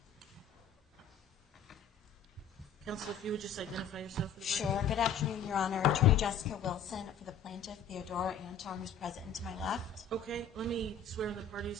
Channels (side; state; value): right; quieter; 6.1 dB